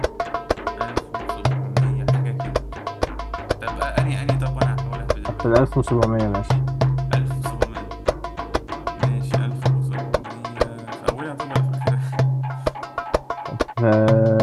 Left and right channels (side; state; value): both; identical; correlation 1.00